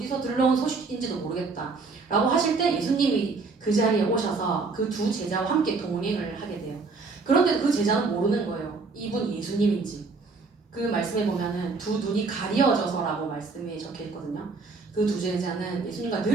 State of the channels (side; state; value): left; quieter; 4.2 dB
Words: 들러온 소식인지도 모르겠다 라고 하실 때 예수님이 그 자리에 오셔서 그 두 제자와 함께 동행을 하게 돼요. 그런데 그 제자는 모르는 거예요, 이분이 예수님인지. 그 말씀에 보면은 두 눈이 가려져서라고 말씀이 적혀 있거든요. 그 두 제자는 예수님과